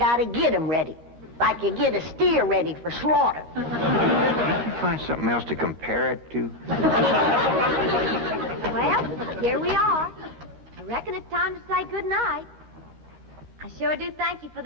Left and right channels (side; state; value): left; late; 13 ms